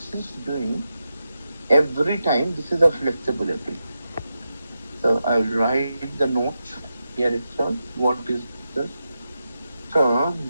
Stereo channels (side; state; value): both; inverted; correlation -0.89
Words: is doing every time. This is a flexibility. So I'll write the note here itself. What is this? So